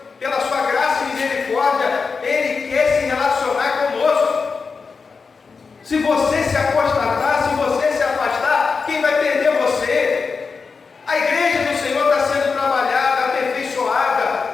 pela sua graça e misericórdia, Ele quer se relacionar conosco. Se você se apostatar, se você se afastar, quem vai perder você? A igreja do Senhor está sendo trabalhada,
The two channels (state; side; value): quieter; right; 4.9 dB